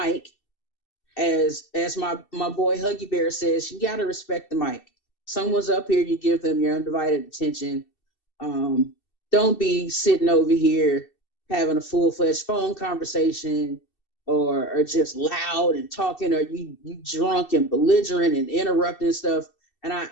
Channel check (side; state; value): right; late; 2.7 ms